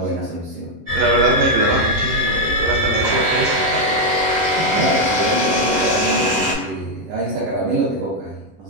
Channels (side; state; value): left; late; 10 ms